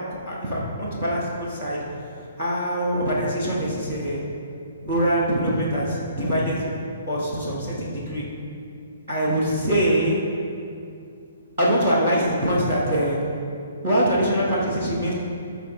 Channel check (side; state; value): both; inverted; correlation -0.61